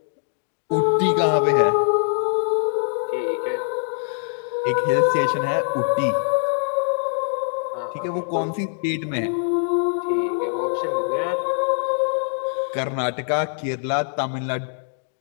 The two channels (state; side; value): silent; right; 63 dB below the other